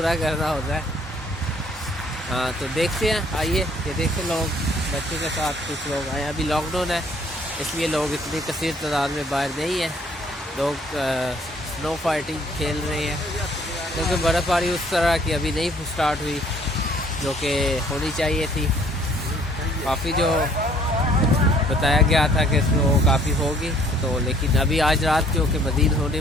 करना होता है। हाँ, तो देखते हैं, आइए। ये देखिए, लोग बच्चों के साथ कुछ लोग आए। अभी लॉकडाउन है, इसलिए लोग इतनी कसीर तादाद में बाहर नहीं है। लोग स्नो फाइटिंग खेल रहे हैं, क्योंकि बर्फ़बारी उस तरह की अभी नहीं स्टार्ट हुई जो कि होनी चाहिए थी। काफ़ी जो बताया गया था कि स्नो काफ़ी होगी, तो लेकिन अभी आज रात जो कि मज़ीद होने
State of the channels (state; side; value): normal; both; correlation 0.61